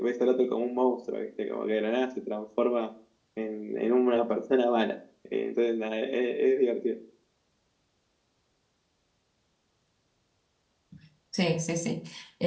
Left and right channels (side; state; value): both; identical; correlation 1.00